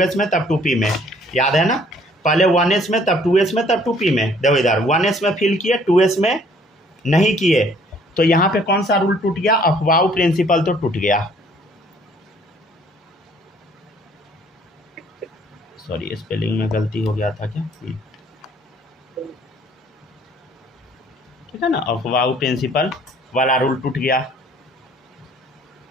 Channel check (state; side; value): normal; both; correlation 0.59